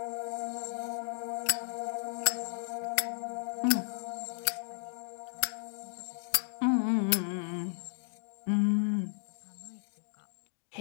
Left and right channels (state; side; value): silent; right; digital silence